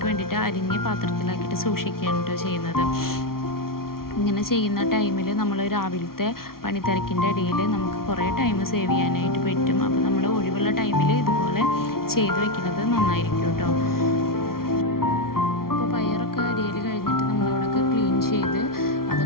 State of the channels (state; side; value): late; right; 0.93 ms